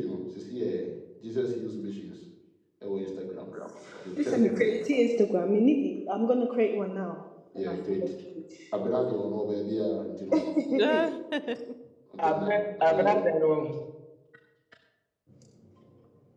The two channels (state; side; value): identical; both; correlation 1.00